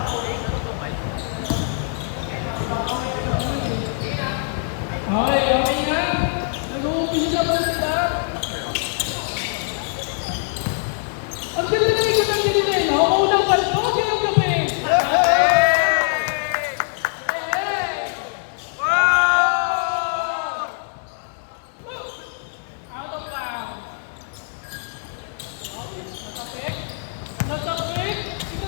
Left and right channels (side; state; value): right; silent; digital silence